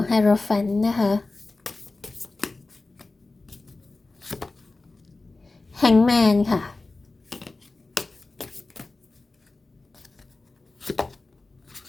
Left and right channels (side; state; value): right; quieter; 3.4 dB